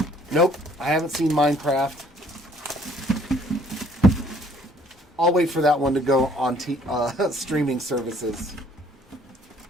Nope, I haven't seen Minecraft. I'll wait for that one to go on streaming services.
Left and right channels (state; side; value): normal; both; correlation 0.60